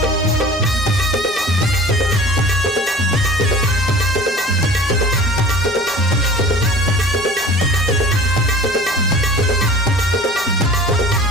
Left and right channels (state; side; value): normal; both; correlation 0.42